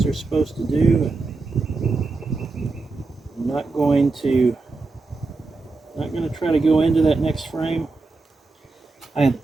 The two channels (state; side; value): quieter; left; 3.7 dB